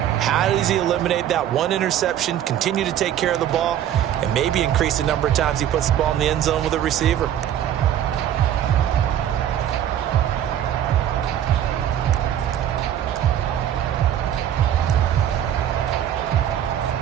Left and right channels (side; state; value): left; quieter; 10.7 dB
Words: How does he eliminate that one interception, continue to take care of the ball, and maybe increase the number of times he puts the ball in the end zone with a receiver?